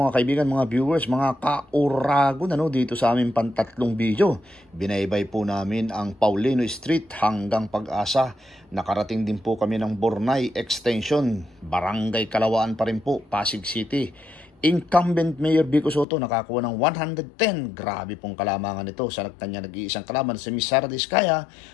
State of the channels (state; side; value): drops out; right; at 16.1 s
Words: kaibigan, mga viewers, mga kauragon dito sa aming pantatlong video. Binaybay po namin ang Paulino Street hanggang Pag-asa. Nakarating din po kami ng Bornay Extension, Barangay Kalawaan pa rin po, Pasig City. Incumbent Mayor Biko Soto nakakuha ng 110. Grabe pong kalamangan ito sa kanya nag-iisang kalaban si Miss Sara Diskaya